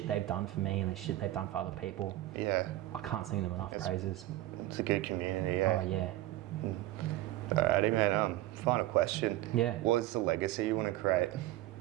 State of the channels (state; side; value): quieter; left; 15.8 dB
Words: they've done for me and the shit they've done for other people. Yeah. I can't sing them enough praises. It's a good community, yeah. Oh, yeah. Alrighty, man. Final question. Yeah. What is the legacy you want to create?